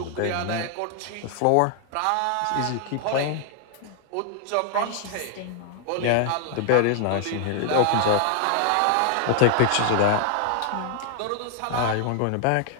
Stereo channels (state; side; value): different; both; correlation 0.00